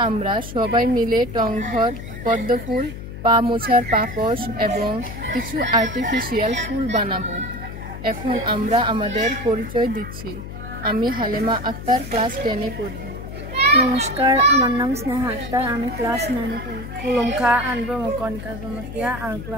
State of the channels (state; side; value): noise; left; hum, 10 dB below the sound